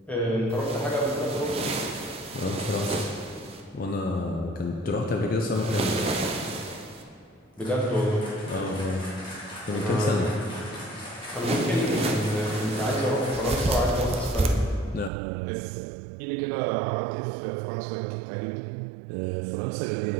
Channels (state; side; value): drops out; left; at 15.1 s